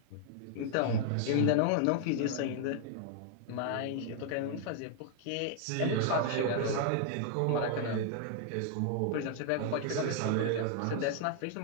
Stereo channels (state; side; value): different; both; correlation 0.00